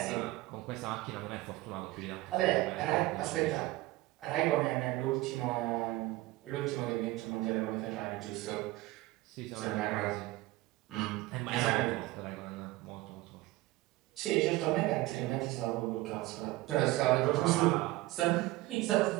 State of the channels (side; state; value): left; quieter; 18.9 dB